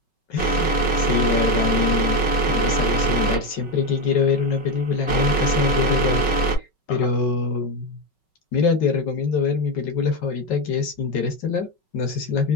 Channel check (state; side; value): late; right; 5.3 ms